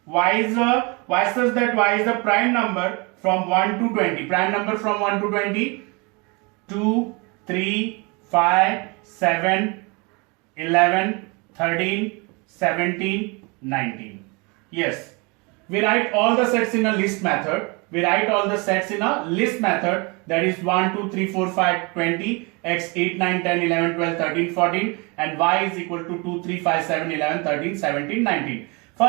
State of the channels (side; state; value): left; quieter; 29.2 dB